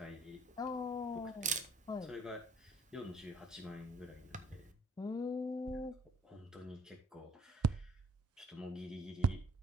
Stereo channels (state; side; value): normal; both; correlation 0.61